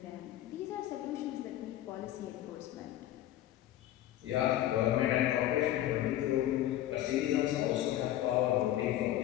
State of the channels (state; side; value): quieter; right; 13.3 dB